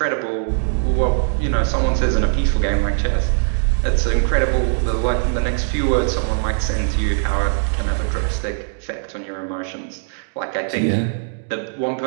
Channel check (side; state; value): left; silent; digital silence